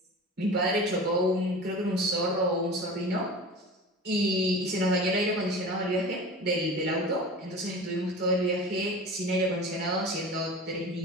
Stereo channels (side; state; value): both; normal; correlation 0.35